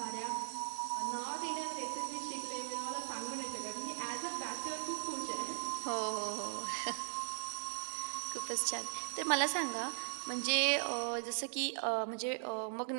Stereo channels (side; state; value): left; silent; digital silence